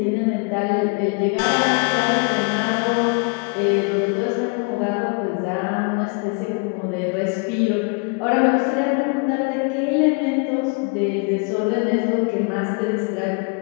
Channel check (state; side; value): quieter; right; 33.9 dB